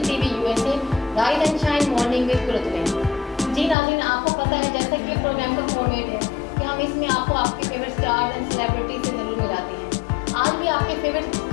TV USA rise and shine morning with Qurratulain. जी नाज़रीन, आपको पता है जैसा कि प्रोग्राम का फॉर्मेट है कि हम इसमें आपको आपके फेवरेट स्टार्स एंड सेलिब्रिटी से ज़रूर मिलाते हैं। आज भी आपके फेवरेट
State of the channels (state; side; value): drops out; right; at 3.8 s